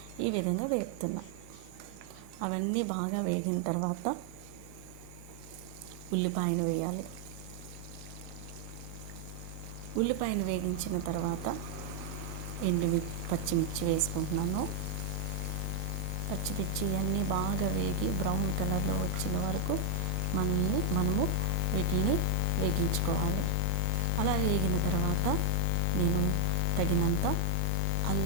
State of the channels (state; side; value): different; both; correlation 0.00